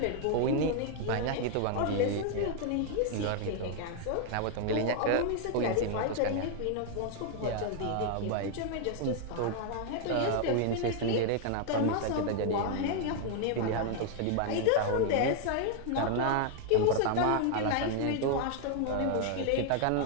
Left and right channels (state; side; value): different; both; correlation 0.00